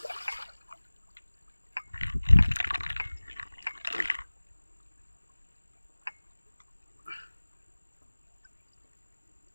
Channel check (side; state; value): both; inverted; correlation -1.00